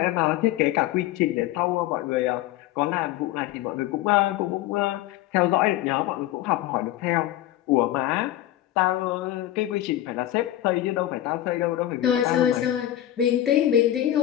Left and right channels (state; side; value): quieter; right; 13.5 dB